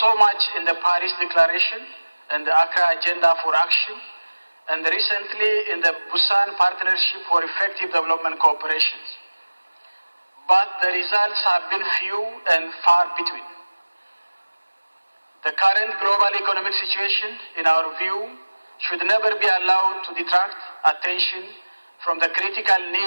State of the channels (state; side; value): inverted; both; correlation -1.00